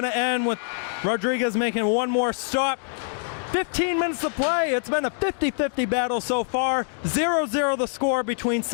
to end, with Rodriguez making one more stop. 15 minutes to play. It's been a 50-50 battle so far. 0-0 the score between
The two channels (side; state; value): right; silent; digital silence